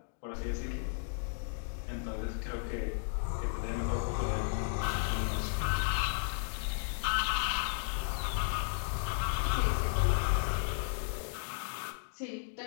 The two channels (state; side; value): silent; right; digital silence